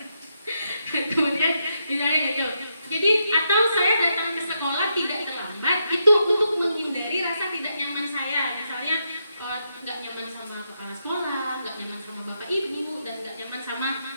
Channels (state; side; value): inverted; both; correlation -0.82